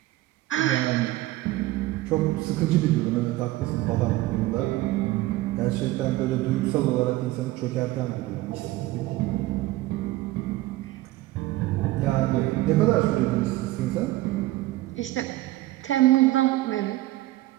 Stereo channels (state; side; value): quieter; left; 17.5 dB